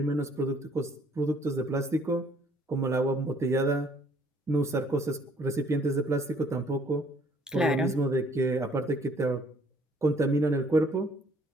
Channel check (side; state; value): both; normal; correlation 0.61